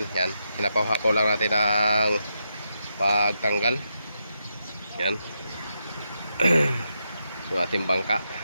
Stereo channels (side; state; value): both; inverted; correlation -0.84